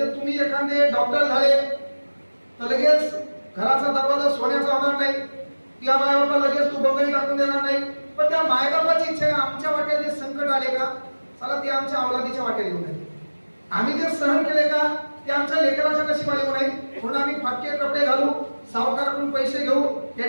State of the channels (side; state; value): both; inverted; correlation -1.00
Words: तुम्ही एखादे डॉक्टर झाले तर लगेच घराचा दरवाजा सोन्याचा होणार नाही, त्या मायबापाला लगेच तू बंगई टाकून देणार नाही. पण त्या मायबापाची इच्छा आहे, आमच्या वाट्यात जे संकट आले का, चला ते आमच्या अवलादीच्या वाट्यात येऊ नये. आम्ही जे सहन केले का, ते आमच्या लेकराच्या नशिबाला येऊ नये. म्हणून आम्ही फाटके कपडे घालू, सावकाराकडून पैसे घेऊ,